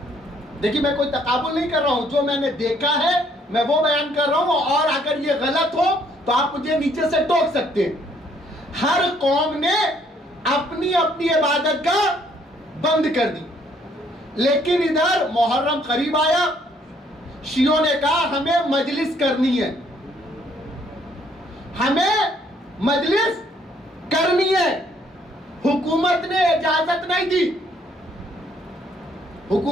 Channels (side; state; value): both; normal; correlation 0.65